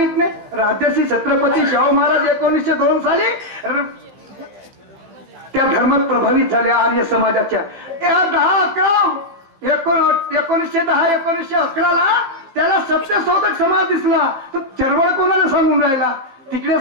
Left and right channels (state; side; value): late; left; 15 ms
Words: नाही. राजर्षी छत्रपती शाहू महाराज 1902 साली त्या धर्मात प्रभावित झाले आर्य समाजाच्या. 1910-1911 त्याला सत्यशोधक समाज दिसला. तो चळवळ कोणाला सांगून राहिला तिकडे